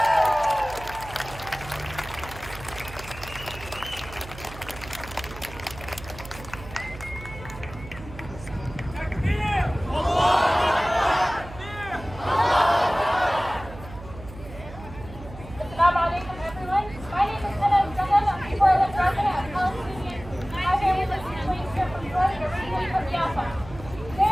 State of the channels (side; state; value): right; noise; hum, 15 dB below the sound